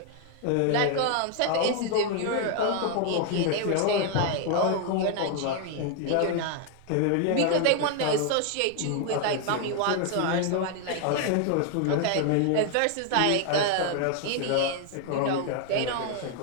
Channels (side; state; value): both; different; correlation 0.00